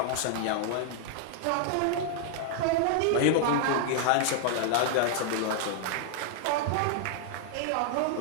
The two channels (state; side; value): different; both; correlation 0.00